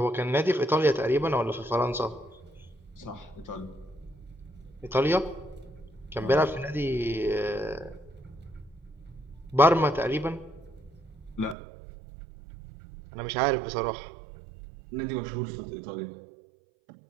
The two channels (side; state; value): left; drops out; at 11.6 s